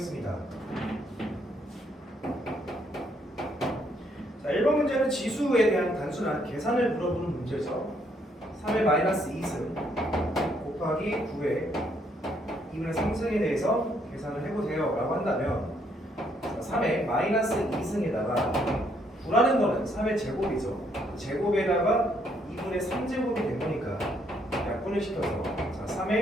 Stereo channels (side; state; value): both; normal; correlation 0.71